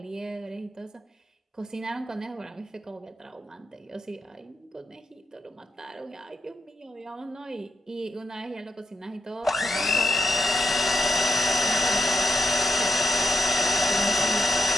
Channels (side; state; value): both; normal; correlation 0.82